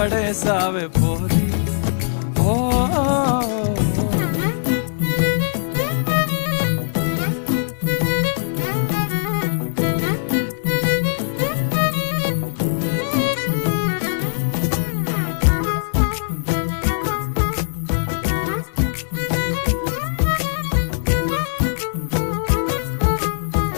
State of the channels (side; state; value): right; silent; digital silence